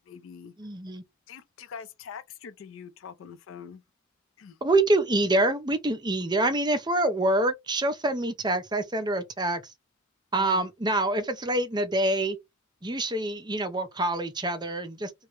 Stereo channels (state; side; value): normal; both; correlation 0.37